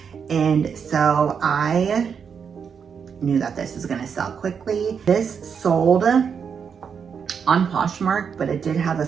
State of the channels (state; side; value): quieter; left; 6.7 dB